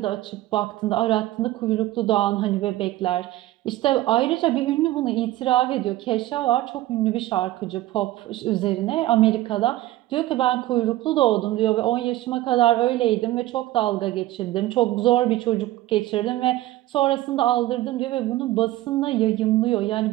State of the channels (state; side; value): quieter; left; 16.0 dB